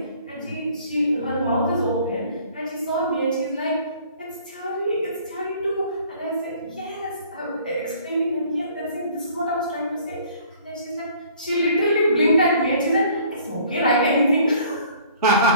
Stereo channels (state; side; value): inverted; both; correlation -0.54